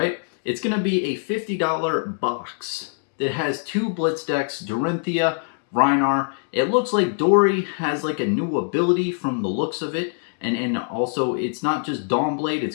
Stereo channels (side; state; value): right; silent; 63 dB below the other